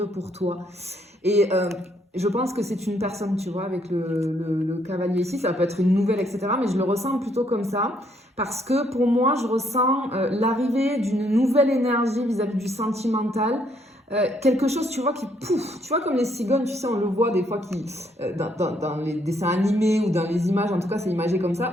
pour toi. Et je pense que c'est une personne, tu vois, avec le cavalier ici. Ça peut être une nouvelle, etc. Mais je le ressens plutôt comme ça. Parce que pour moi, je ressens l'arrivée d'une nouvelle énergie vis-à-vis du sentimental. Quelque chose, tu vois, qui pouf, tu vois, comme les cigognes, tu sais, on le voit des fois qui, dans les dessins animés ou dans les images, en tout cas, c'est imagé comme ça,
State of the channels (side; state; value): both; normal; correlation 0.70